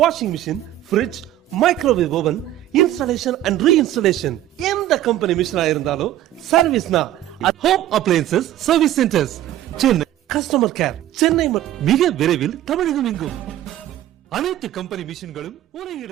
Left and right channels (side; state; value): left; quieter; 13.0 dB